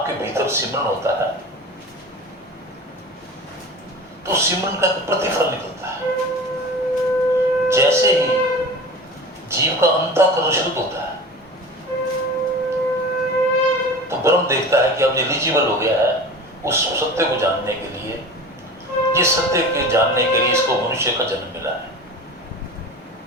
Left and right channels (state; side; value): normal; both; correlation 0.35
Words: भीतर सिमरन होता है, तो सिमरन का प्रतिफल निकलता है। जैसे ही जीव का अंतःकरण शुद्ध होता है, तो ब्रह्म देखता है कि अब एलिजिबल हो गया है उस सत्य को जानने के लिए, जिस सत्य के जानने के लिए इसको मनुष्य का जन्म मिला है।